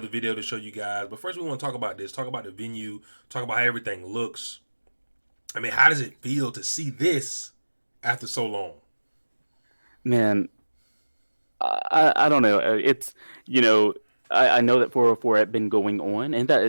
video to show you guys. But first, we want to talk about this. Talk about the venue. Talk about how everything looks. I mean, how does it feel to see this after so long? Man, I don't know. It's you know I know that 404 had been going on, and that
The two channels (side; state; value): both; inverted; correlation -1.00